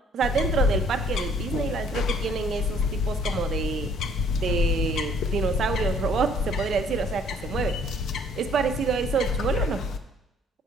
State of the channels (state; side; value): normal; both; correlation 0.60